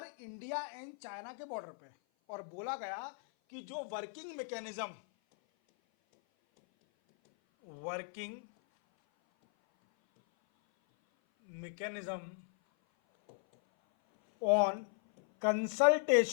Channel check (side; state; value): right; silent; 53 dB below the other